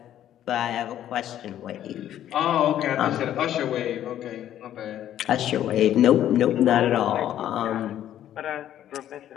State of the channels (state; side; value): quieter; right; 11.5 dB